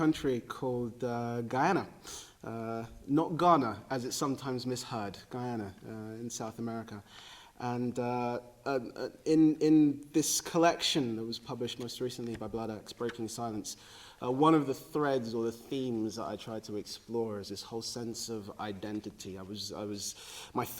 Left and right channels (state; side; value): identical; both; correlation 1.00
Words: called Guyana, not Ghana, as it's sometimes misheard, Guyana in South America. And in this collection that was published most recently by Bloodaxe, Breaking Silence, one of the threads or the themes that I tried to explore is this whole sense of identity. My